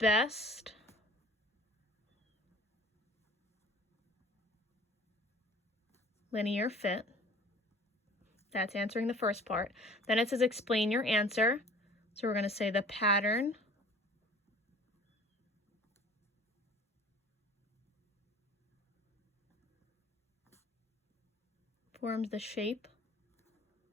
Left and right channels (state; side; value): normal; both; correlation 0.48